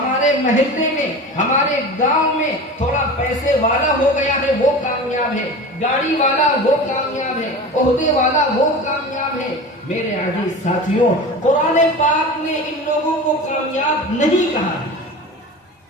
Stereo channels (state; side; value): normal; both; correlation 0.32